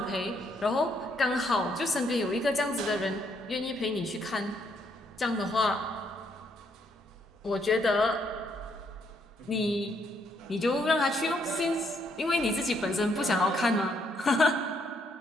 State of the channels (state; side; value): normal; both; correlation 0.72